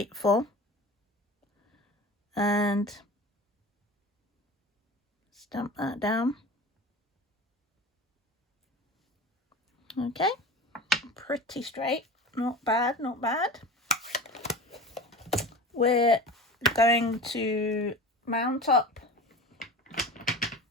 and stamp that down. Okay, pretty straight, not bad. We're going to mount up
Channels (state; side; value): normal; both; correlation 0.34